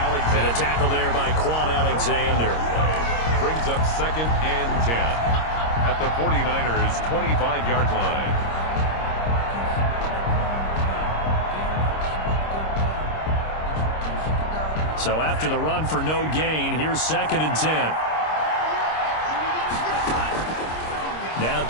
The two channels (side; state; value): right; late; 26 ms